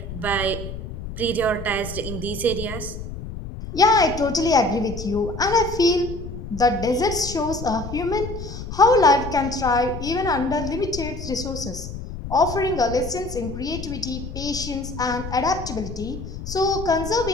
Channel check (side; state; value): left; noise; rumble, 9 dB below the sound